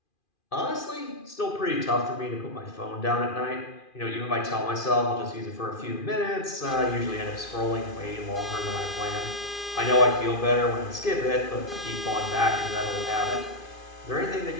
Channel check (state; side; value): late; right; 2.4 ms